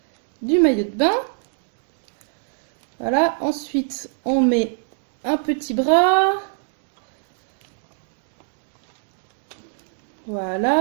du maillot de bain. Voilà, ensuite on met un petit bras.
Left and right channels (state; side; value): silent; left; digital silence